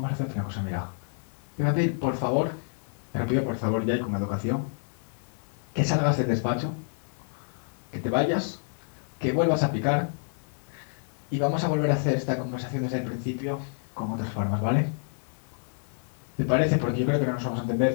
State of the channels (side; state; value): right; silent; digital silence